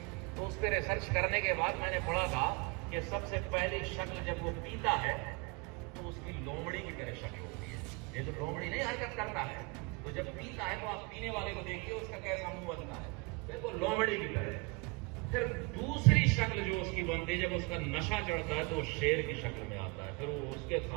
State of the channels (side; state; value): left; quieter; 28.6 dB